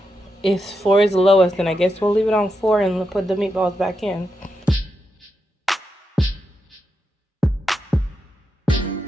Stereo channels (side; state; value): both; normal; correlation 0.86